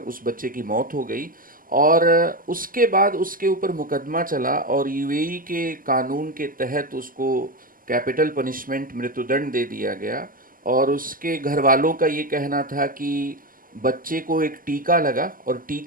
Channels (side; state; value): left; late; 0.41 ms